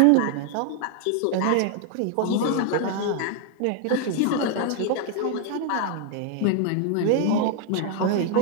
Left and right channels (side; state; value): both; different; correlation 0.00